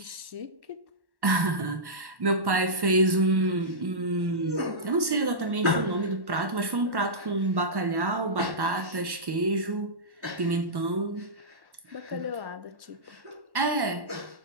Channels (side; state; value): left; late; 1.1 ms